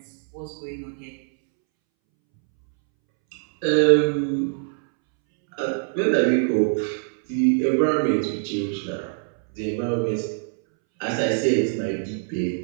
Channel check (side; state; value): left; silent; 63 dB below the other